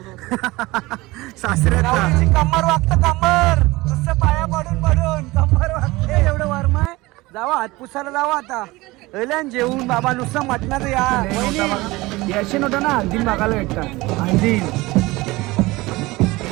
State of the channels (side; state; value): left; quieter; 20.8 dB